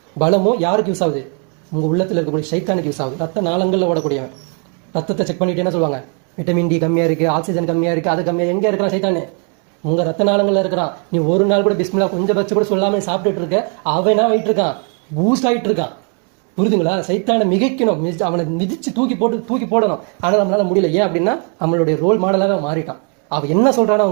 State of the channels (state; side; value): quieter; left; 38.3 dB